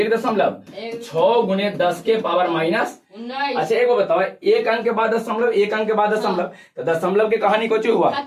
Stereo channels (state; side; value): identical; both; correlation 1.00